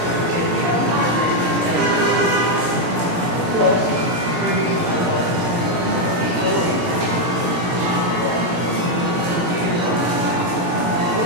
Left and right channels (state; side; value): late; left; 17 ms